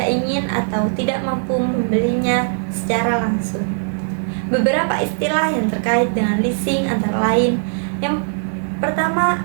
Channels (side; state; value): left; silent; digital silence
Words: ingin atau tidak mampu membelinya secara langsung. Beberapa istilah yang terkait dengan leasing antara lain: yang pertama